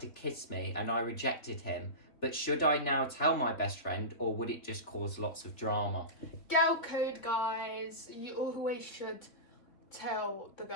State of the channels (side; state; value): right; late; 3.4 ms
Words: kiss me and I rejected him. But should I now tell my best friend or would it just cause lots of drama? Girl code, guys. You always should tell the